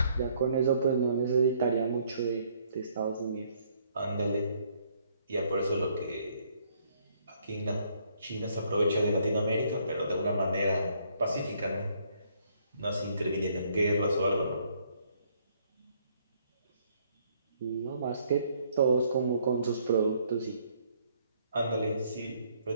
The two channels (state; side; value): inverted; both; correlation -0.67